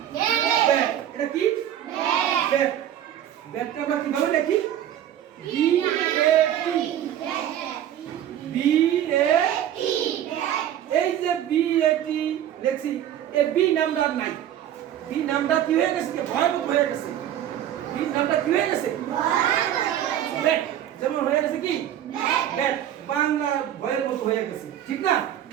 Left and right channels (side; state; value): left; quieter; 11.0 dB